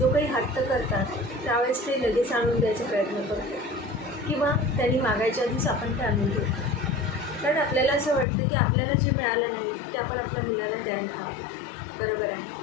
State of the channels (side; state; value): right; drops out; at 8.2 s